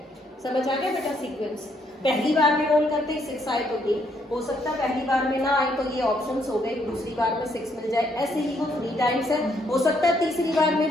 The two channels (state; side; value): normal; both; correlation 0.71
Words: समझ आ गया बेटा सीक्वेंस? पहली बार में रोल करते ही 6 आए तो ये हो सकता है, पहली बार में ना आए तो ये ऑप्शंस हो गए, दूसरी बार में 6 मिल जाए, ऐसे ही वो 3 टाइम्स है। हो सकता है तीसरी बार में